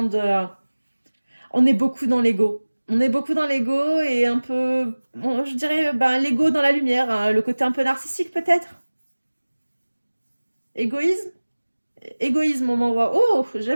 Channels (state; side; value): inverted; both; correlation -1.00